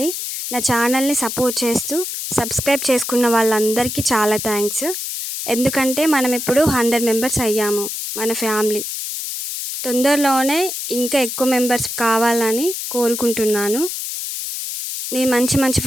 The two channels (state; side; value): noise; left; hiss, 5 dB below the sound